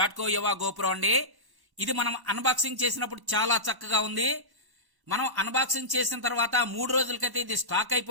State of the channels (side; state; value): left; late; 1.1 ms